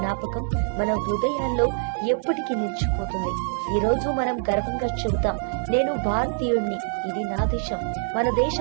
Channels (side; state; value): left; silent; 62 dB below the other